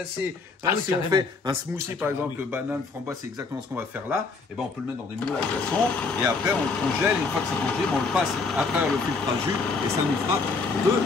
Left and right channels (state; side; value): quieter; right; 4.2 dB